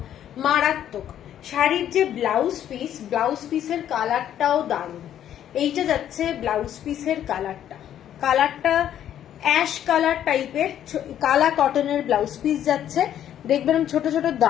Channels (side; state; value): right; quieter; 10.7 dB